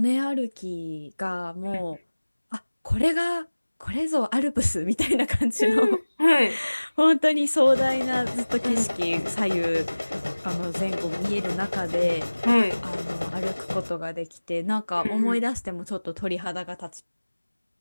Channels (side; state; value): both; inverted; correlation -1.00